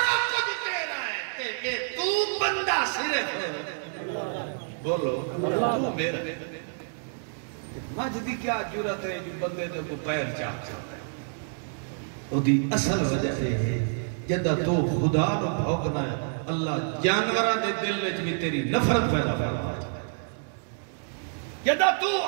کچھ تیرا ہے کہ تو بندہ صرف ہے۔ بولو تو میرا مجھ دی کیا جرت ہے جو بندے دے کو پیر چاہتا ہے وہ دی اصل وجہ ہے جدہ تو خدا نو بھوگنا ہے اللہ جانورہ دے دل میں بھی تیری نفرت پیدا فرما جدہ تو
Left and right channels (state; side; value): silent; left; 59 dB below the other